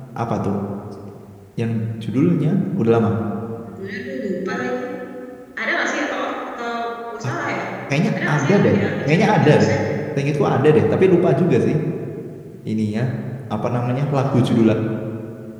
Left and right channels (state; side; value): identical; both; correlation 1.00